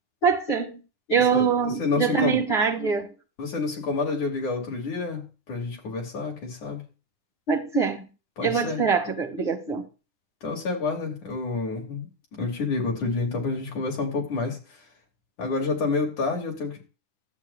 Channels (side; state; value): right; late; 9.8 ms